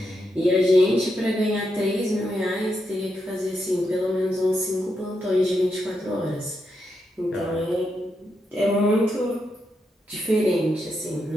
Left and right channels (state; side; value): normal; both; correlation 0.83